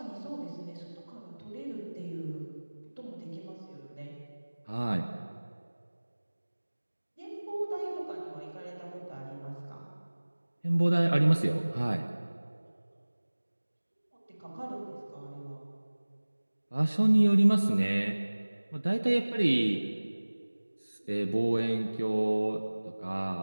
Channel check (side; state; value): both; inverted; correlation -1.00